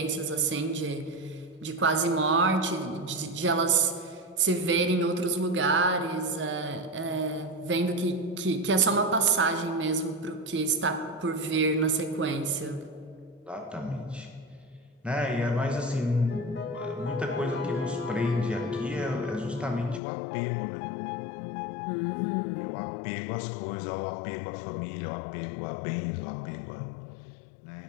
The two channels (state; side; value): drops out; right; at 20.0 s